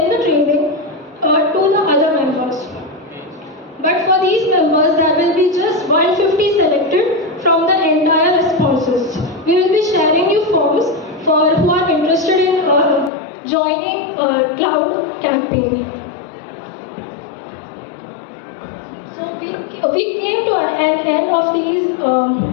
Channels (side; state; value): right; drops out; at 13.1 s